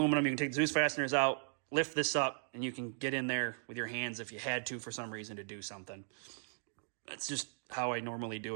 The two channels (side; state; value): left; silent; digital silence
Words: you can take the Zeus fasteners out, lift this up, and you can get in there with your hands if you had to for some reason to do something. That's just how I normally